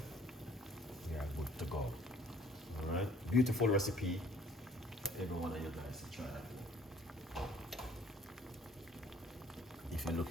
we are good to go. All right, beautiful recipe. Every one of you guys try that. If you're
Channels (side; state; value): both; normal; correlation 0.57